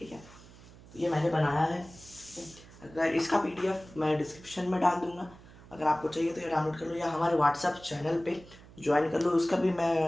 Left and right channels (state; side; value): noise; right; hum, 21 dB below the sound